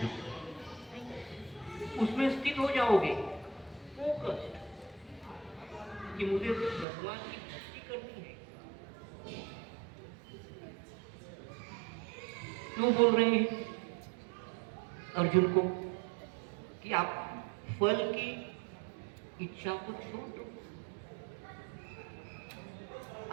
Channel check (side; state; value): left; drops out; at 6.9 s